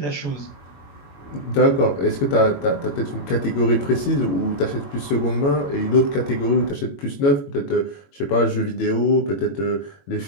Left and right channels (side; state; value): right; late; 21 ms